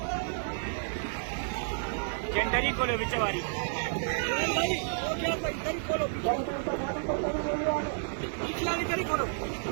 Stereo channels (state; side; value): silent; left; 57 dB below the other